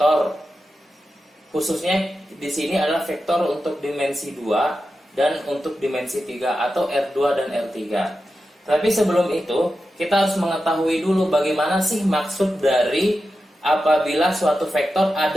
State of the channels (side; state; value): both; normal; correlation 0.91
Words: Khususnya di sini adalah vektor untuk dimensi 2 dan untuk dimensi 3 atau R2 dan R3. Tapi sebelum itu, kita harus mengetahui dulu bagaimana sih maksud dari apabila suatu vektor